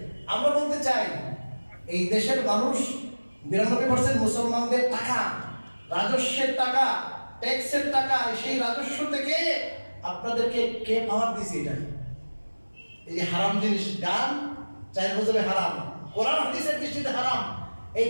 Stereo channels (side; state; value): both; inverted; correlation -1.00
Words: আমরা বলতে চাই, এই দেশের মানুষ 92% মুসলমানদের টাকা, রাজস্বের টাকা, ট্যাক্সের টাকা, সেই রাজস্ব থেকে আপনাদেরকে কে পাওয়ার দিছে? এটা এই যে হারাম জিনিস, গান 4 বছরে হারাম, কোরআন হাদিসের দৃষ্টিতে হারাম, এই